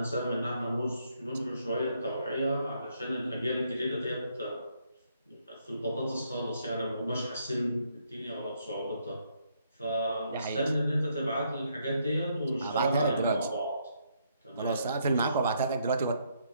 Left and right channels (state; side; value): inverted; both; correlation -0.73